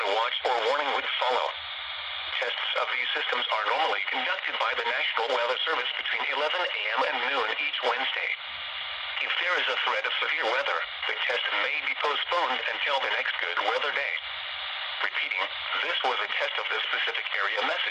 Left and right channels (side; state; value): both; identical; correlation 1.00